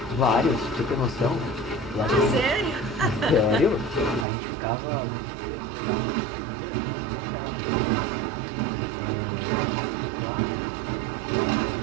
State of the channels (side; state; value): left; drops out; at 4.2 s